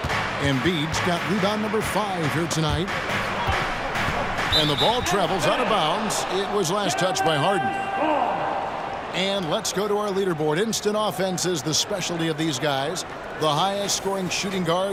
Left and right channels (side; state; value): both; identical; correlation 1.00